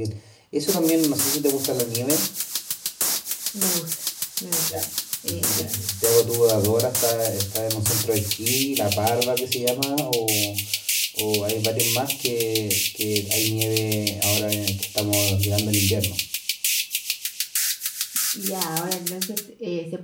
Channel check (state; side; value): identical; both; correlation 1.00